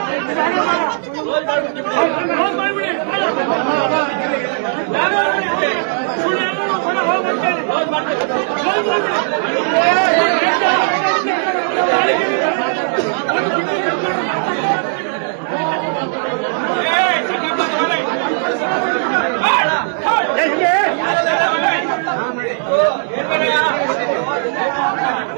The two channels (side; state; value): left; silent; 68 dB below the other